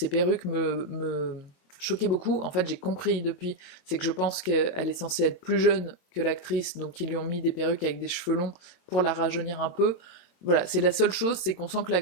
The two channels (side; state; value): right; late; 22 ms